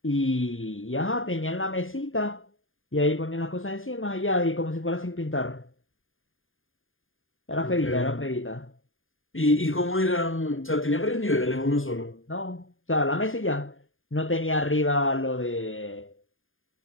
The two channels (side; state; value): right; late; 0.59 ms